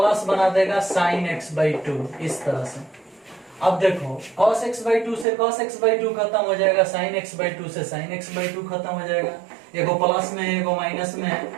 बना देगा साइन x/2, इस तरह से। अब देखो cos x/2 से cos x/2 खत्म हो जाएगा, साइन x/2 से साइन x/2 खत्म हो जाएगा, एगो प्लस में है एगो माइनस में है,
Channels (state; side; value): drops out; left; at 5.2 s